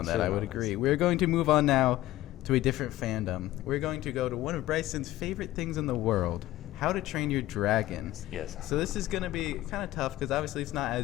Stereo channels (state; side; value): quieter; right; 15.8 dB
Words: that, I Should've would known agree. this. We're going to move on now to a different fandom. We're going to go to one of Bryson's favorite things in the world, How to Train Your Dragon. Yes. So this is going to be kind of tough because obviously it's not